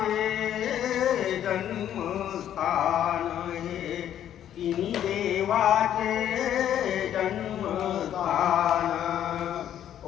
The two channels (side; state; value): right; quieter; 10.6 dB